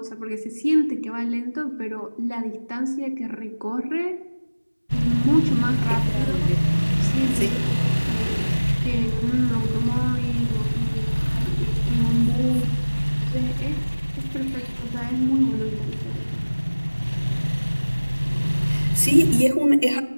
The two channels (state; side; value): inverted; both; correlation -1.00